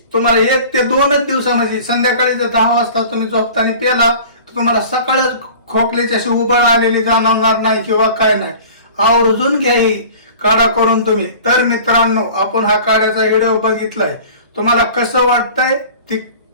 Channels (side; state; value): both; inverted; correlation -0.43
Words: तुम्हाला 1 ते 2च दिवसामध्ये, संध्याकाळी जर 10 वाजता तुम्ही झोपताना प्याला तर तुम्हाला सकाळच खोकल्याची अशी उबळ आलेली जाणवणार नाही किंवा काय नाही. आवर्जून घ्या ही काढा करून तुम्ही. तर मित्रांनो आपण हा काढ्याचा व्हिडिओ बघितलाय, तुम्हाला कसं वाटतंय ती